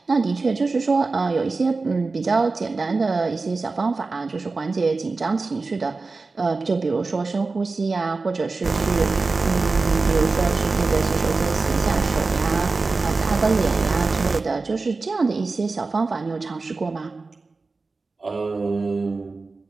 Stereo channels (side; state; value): left; quieter; 3.8 dB